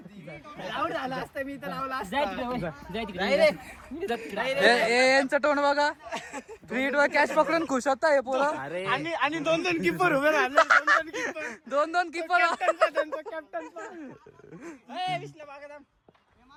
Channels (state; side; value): identical; both; correlation 1.00